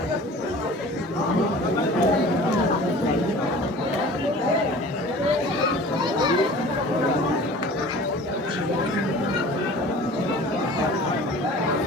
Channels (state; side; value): normal; both; correlation 0.43